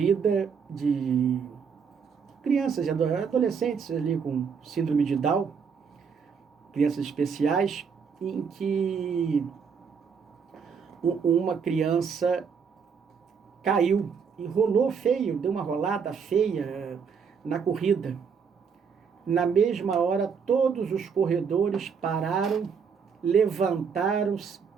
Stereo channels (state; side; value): quieter; left; 6.3 dB